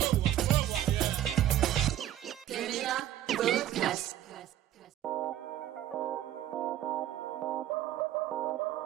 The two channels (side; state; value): left; quieter; 12.4 dB